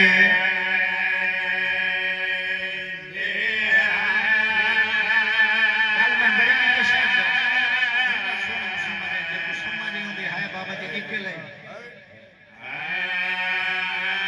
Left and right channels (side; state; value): both; identical; correlation 1.00